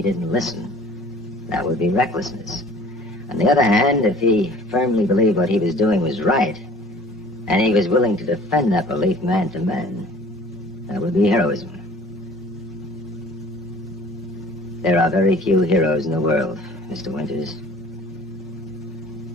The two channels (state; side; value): normal; both; correlation 0.47